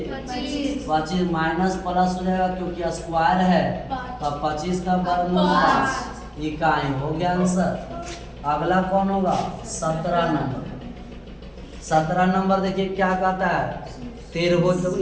25 माइनस प्लस हो जाएगा क्योंकि स्क्वायर है तो 25 का वर्गमूल 5 इकाई हो गया आंसर। अगला कौन होगा 17 नंबर। 17 नंबर देखिए क्या कहता है त्रिभुज। तो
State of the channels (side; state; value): both; identical; correlation 1.00